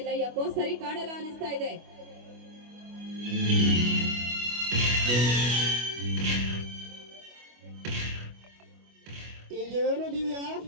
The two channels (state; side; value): late; left; 25 ms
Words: ಯಾಕೋ ಸರಿ ಕಾಣಲ್ಲ ಅನಿಸ್ತಾ ಇದೆ. ಇದೇನು ದಿವ್ಯಾ,